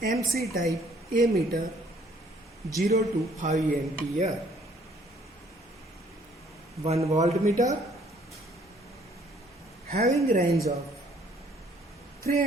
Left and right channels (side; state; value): both; normal; correlation 0.61